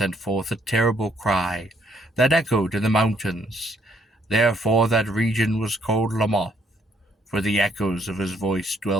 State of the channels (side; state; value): both; normal; correlation 0.69